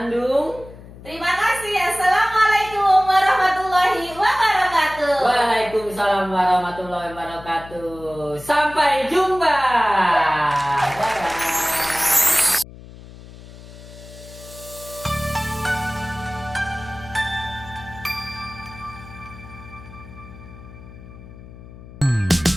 Terima kasih. Assalamualaikum warahmatullahi wabarakatuh. Waalaikumsalam warahmatullahi wabarakatuh. Sampai jumpa.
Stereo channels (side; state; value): left; noise; hum, 17 dB below the sound